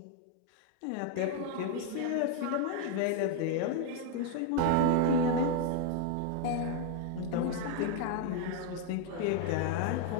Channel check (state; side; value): different; both; correlation 0.01